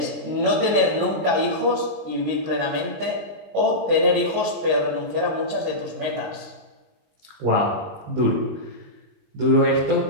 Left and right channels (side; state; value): left; late; 19 ms